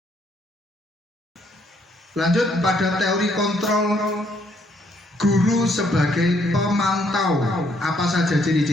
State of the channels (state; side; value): normal; both; correlation 0.69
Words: Lanjut pada teori kontrol guru sebagai pemantau. Apa saja